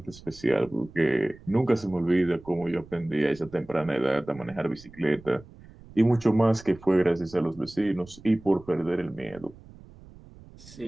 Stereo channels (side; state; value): right; noise; rumble, 21 dB below the sound